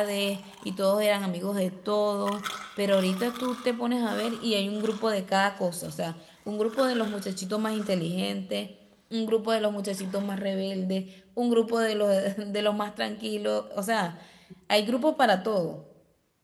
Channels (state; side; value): identical; both; correlation 1.00